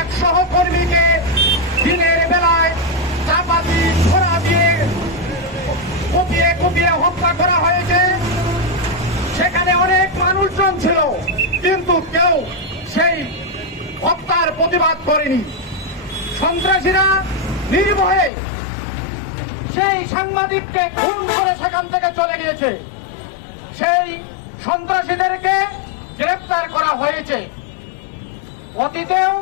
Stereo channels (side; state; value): right; drops out; at 18.3 s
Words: সহকর্মীকে দিনের বেলায় চাপাতি ছোড়া দিয়ে কুপিয়ে কুপিয়ে হত্যা করা হয়েছে। সেখানে অনেক মানুষজন ছিল, কিন্তু কেউ সেই হত্যার প্রতিবাদ করেনি। সন্ত্রাসীরা নির্ভয়ে সেই সাংবাদিককে খুন করে সেখান থেকে চলে গিয়েছে। সেই সন্ত্রাসীদেরকে গ্রেফতার করা হয়েছে। অতীতেও